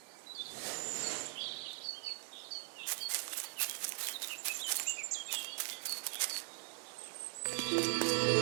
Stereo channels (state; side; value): silent; left; 51 dB below the other